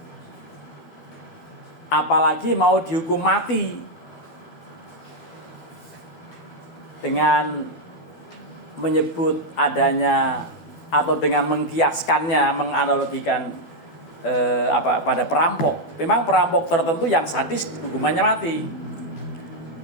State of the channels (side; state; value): right; late; 12 ms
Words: Apalagi mau dihukum mati dengan menyebut adanya atau dengan mengkiaskannya, menganalogikan pada perampok. Memang perampok tertentu yang sadis hukumannya mati.